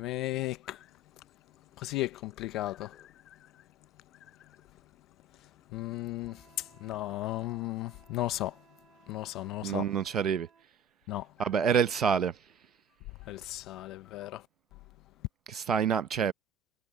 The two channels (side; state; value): both; normal; correlation 0.40